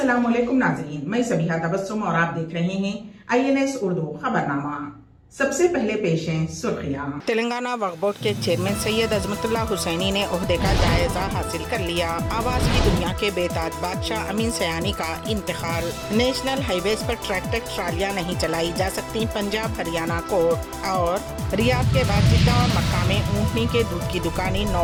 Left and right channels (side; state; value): both; identical; correlation 1.00